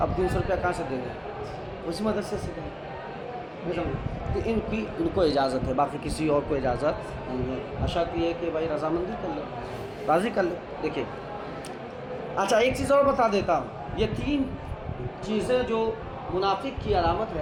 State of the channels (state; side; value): identical; both; correlation 1.00